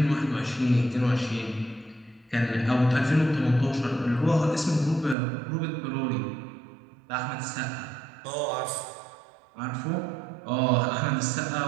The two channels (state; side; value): drops out; left; at 5.2 s